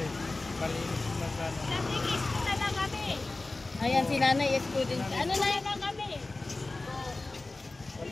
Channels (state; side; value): quieter; right; 3.2 dB